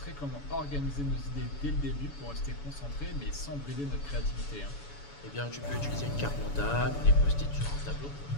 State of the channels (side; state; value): right; late; 7.0 ms